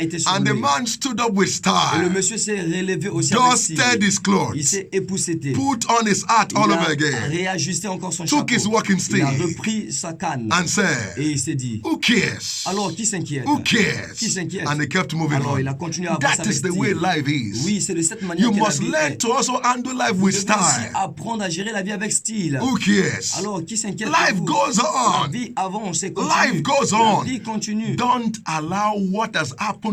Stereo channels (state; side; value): identical; both; correlation 1.00